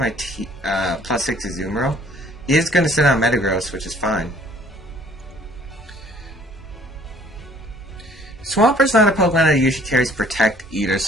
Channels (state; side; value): normal; both; correlation 0.56